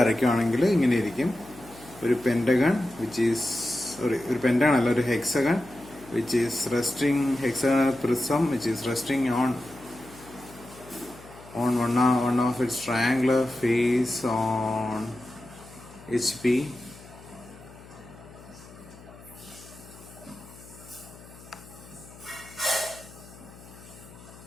ഇങ്ങനെ ഇരിക്കും. ഒരു pentagon which is ഒരു പെൻറ്റഗൺ അല്ല, ഒരു hexagon which is resting, hexagonal prism which is resting on one of its triangular face on HP.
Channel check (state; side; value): noise; left; hum, 20 dB below the sound